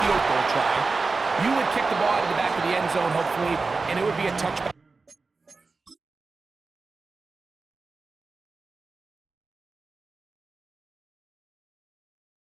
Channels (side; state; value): left; quieter; 4.0 dB